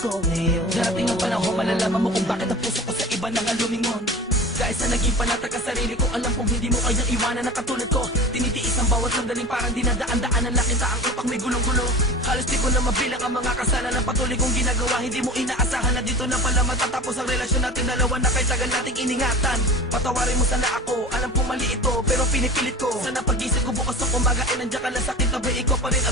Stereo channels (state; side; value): normal; both; correlation 0.35